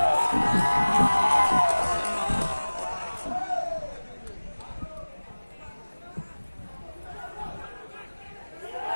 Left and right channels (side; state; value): both; inverted; correlation -1.00